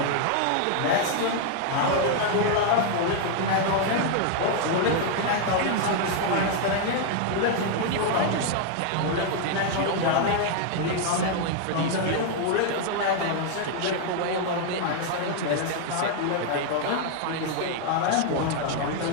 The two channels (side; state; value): both; different; correlation 0.00